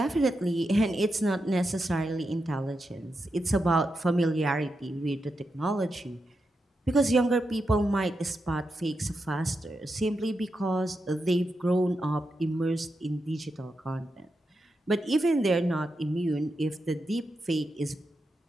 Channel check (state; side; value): normal; both; correlation 0.87